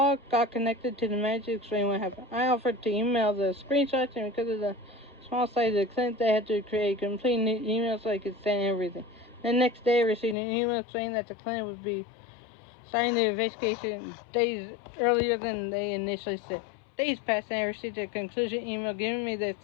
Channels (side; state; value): right; drops out; at 10.4 s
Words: got connected to the manager, explained what happened. I offered to email the screenshots, and because of the small size of the clinic, they had to create a complete new email so I could send everything. The next day, I received an email saying that the clinic would be starting the investigation days earlier than they initially said. Days passed, and I received a conclusion email giving me their